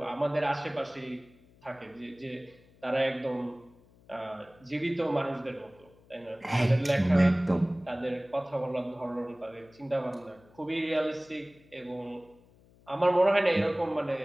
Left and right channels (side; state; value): left; noise; hum, 28 dB below the sound